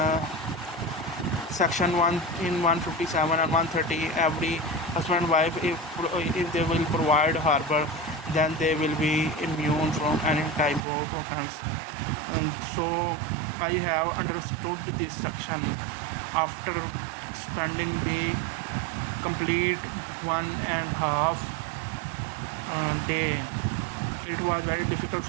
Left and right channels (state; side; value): drops out; left; at 10.8 s